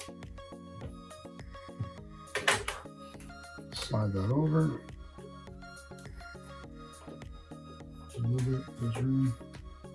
Slide that over. Move it, there's room.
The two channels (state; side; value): identical; both; correlation 1.00